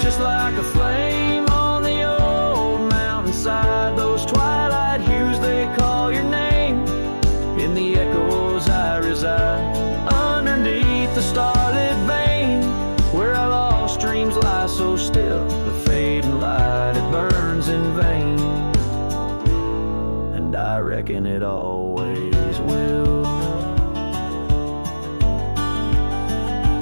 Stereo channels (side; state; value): both; inverted; correlation -1.00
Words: just like a flame on the old mountainside. Those twilight hues, they call your name. In the echoes I reside, underneath the starlit vein, where our lost dreams lie so still. The fading light, it burns in vain, and I reckon it always will.